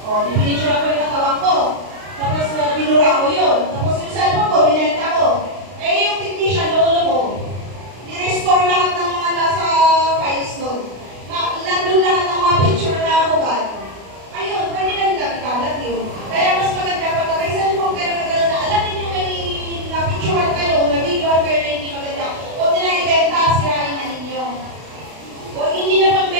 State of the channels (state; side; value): late; left; 32 ms